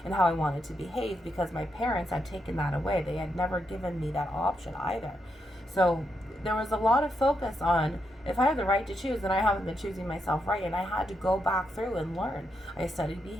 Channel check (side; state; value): both; normal; correlation 0.82